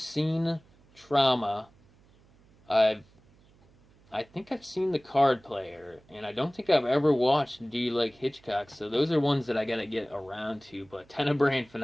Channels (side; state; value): right; noise; hum, 29 dB below the sound